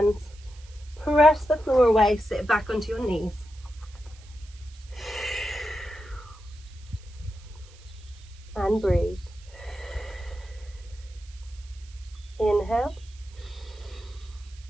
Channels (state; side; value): noise; right; hiss, 25 dB below the sound